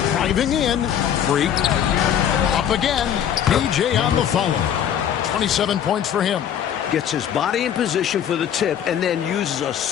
Driving in. Freak. Up again. DJ on the follow. 27 points for him. Gets his body in position for the tip and then uses a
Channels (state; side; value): quieter; right; 9.4 dB